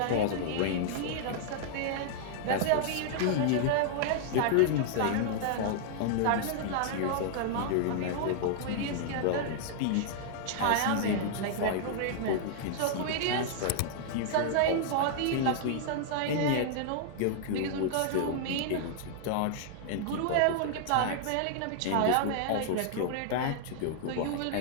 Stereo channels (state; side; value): different; both; correlation -0.01